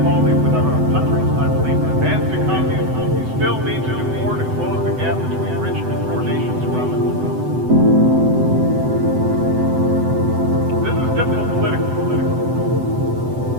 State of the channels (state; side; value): late; left; 7.9 ms